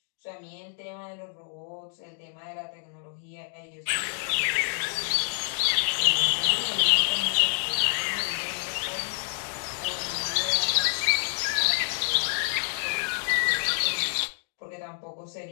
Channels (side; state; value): right; silent; digital silence